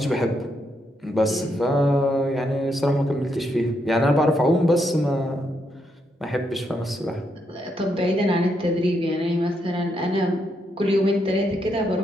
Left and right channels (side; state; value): both; normal; correlation 0.79